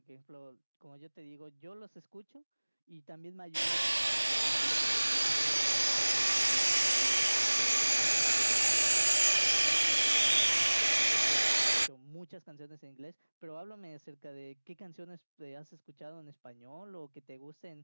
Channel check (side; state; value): both; inverted; correlation -1.00